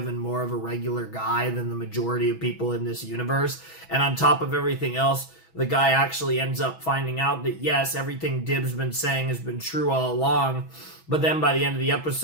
and more of a regular guy than the majority of people in this universe. And on top of everything else, the guy actually ends up finding out that yes, everything Dib's been saying has been true all along, but then by the end of the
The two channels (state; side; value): late; right; 6.1 ms